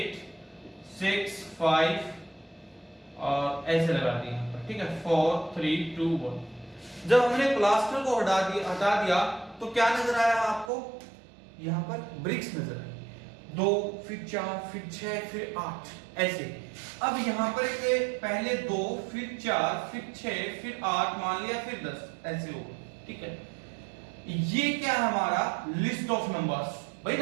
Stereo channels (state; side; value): drops out; left; at 10.7 s